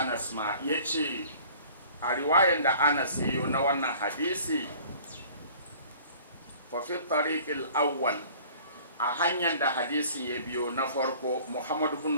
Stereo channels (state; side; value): inverted; both; correlation -0.49